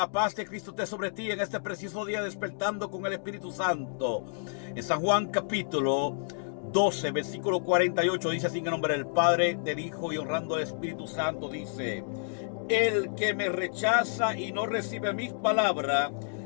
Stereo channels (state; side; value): silent; right; digital silence